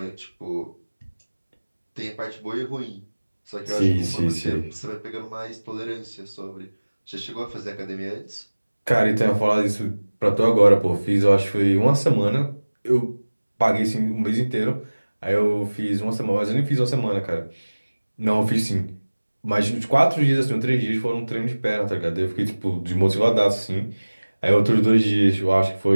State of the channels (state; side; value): inverted; both; correlation -1.00